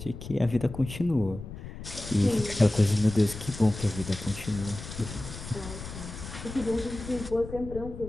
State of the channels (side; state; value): left; noise; rumble, 11 dB below the sound